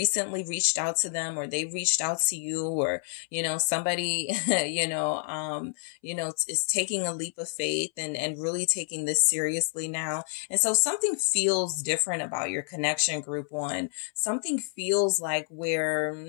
reached out to them, or they've reached out to you, or, you know, somebody, is taking a leap of faith and really taking this seriously now. And so something feels different about your connection, group one. Something feels like where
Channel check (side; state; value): right; silent; 59 dB below the other